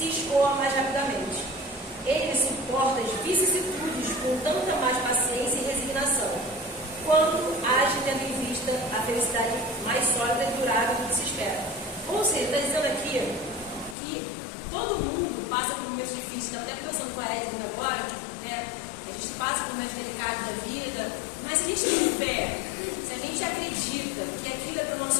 escoa mais rapidamente. Ele suporta as vicissitudes com tanta mais paciência e resignação, quanto age tendo em vista a felicidade mais sólida e durável do que se espera. Ou seja, está dizendo aqui que todo mundo passa por momentos difíceis. Estava até conversando com a Edna agora, né? A gente passa por momentos delicados da vida, mas se a gente tem fé, se a gente acredita que aquilo é para o nosso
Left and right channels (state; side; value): drops out; right; at 14.0 s